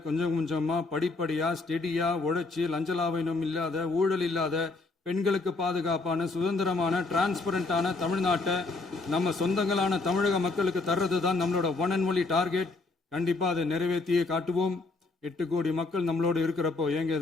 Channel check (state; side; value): quieter; right; 3.5 dB